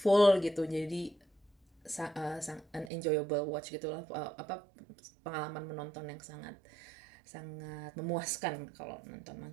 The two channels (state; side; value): drops out; left; at 2.9 s